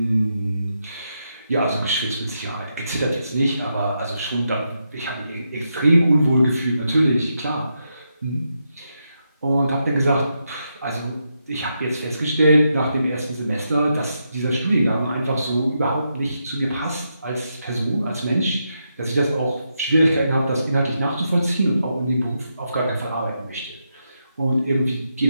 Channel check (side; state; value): both; inverted; correlation -0.83